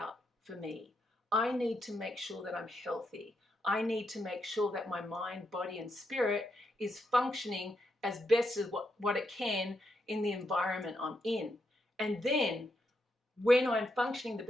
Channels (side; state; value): both; normal; correlation 0.82